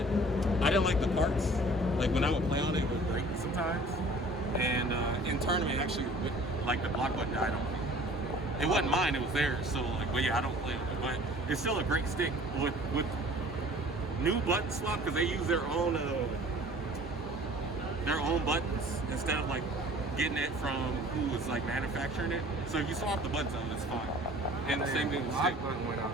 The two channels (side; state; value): both; normal; correlation 0.48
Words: I didn't like the parts. Like when I would play on it, it would break sometimes. And in tournament, actually, like the block button died on me. It wasn't mine; it was theirs. So like, but yeah, I don't play on it. But it's still a great stick with new button swap because they use their own buttons instead of like getting it from who was like manufacturing it. So if you swap the buttons out, it's fine. And the same thing with the stick. Button went